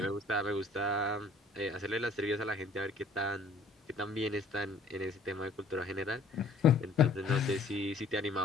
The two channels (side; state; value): right; quieter; 3.2 dB